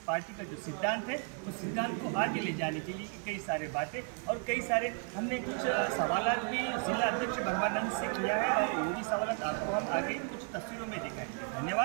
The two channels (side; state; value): left; quieter; 39.6 dB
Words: पार्टी का जो सिद्धांत है उस सिद्धांत को आगे ले जाने के लिए कई सारे बातें और कई सारे हमने कुछ सवालात भी जिला अध्यक्ष ब्रह्मानंद से किया है और वो भी सवालात आपको हम आगे कुछ तस्वीरों में दिखाएंगे।